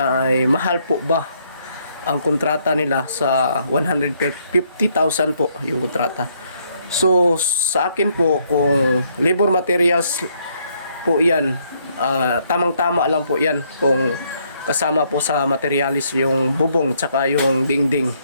ay mahal po ba ang kontrata nila sa 150,000 po yung kontrata. So sa akin po, kung labor materials po yan, tamang-tama lang po yan kung kasama po sa materialis yung bubong tsaka yung dingding.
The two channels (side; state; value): both; inverted; correlation -0.70